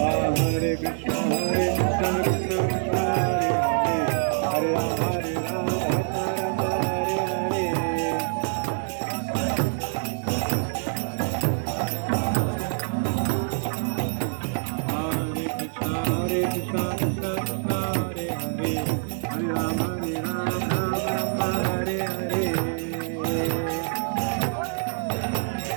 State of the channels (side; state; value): left; silent; digital silence